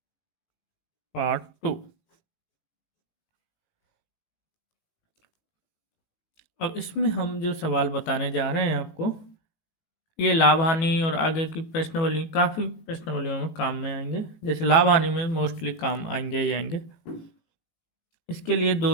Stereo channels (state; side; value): late; right; 18 ms